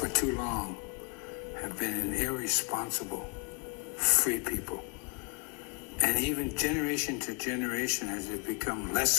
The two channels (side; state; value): right; quieter; 32.2 dB